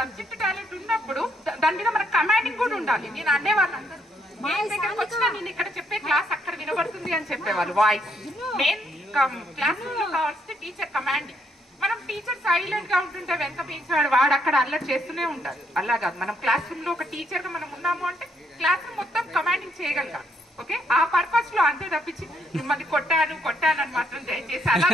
టాలెంట్ ఉన్నప్పుడు దాని మీద మనకు కమాండింగ్ కూడా ఉండాలి. నేను అనేవాళ్ళు అందరూ నేను దగ్గరకు వచ్చినా నేను ఇక్కడ చెప్పే క్లాస్ అక్కడ వినబడుతుంది అని చెప్పేవాళ్ళు. వాయిస్ మెయిన్ క్లాస్ రూమ్ లో కావాల్సింది టీచర్ కమాండింగ్. మనం టీచర్ సైలెంట్ గా ఉంటుంటే వెనక పీచాడు వాడు అక్కడ అల్లరి చేస్తూనే ఉండాలి. అలా కాదు, మనం క్లాస్ రూమ్ లో ఒక టీచర్ గా మనం ఉన్నాము అంటే క్లాస్ రూమ్ మొత్తం కమాండింగ్ చేయగలగాలి. ఓకే, ఆ పర్పస్ లో అంతే తప్పించి మిమ్మల్ని కొట్టాను అని మాత్రం దయచేసి అలా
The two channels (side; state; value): both; normal; correlation 0.73